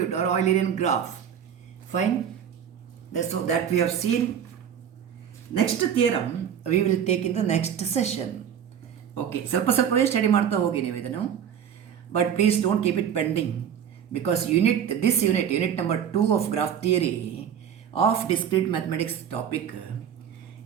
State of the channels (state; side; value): quieter; left; 8.7 dB